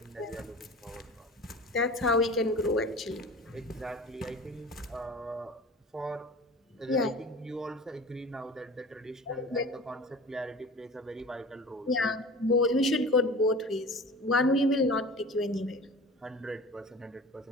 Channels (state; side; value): normal; both; correlation 0.38